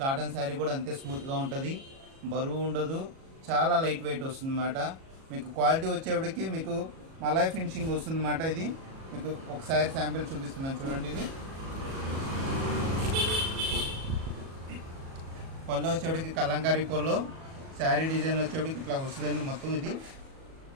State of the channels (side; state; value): left; late; 37 ms